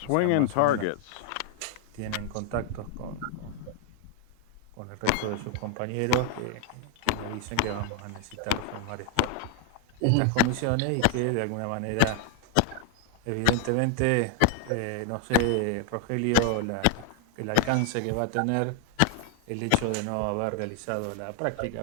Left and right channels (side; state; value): both; different; correlation 0.00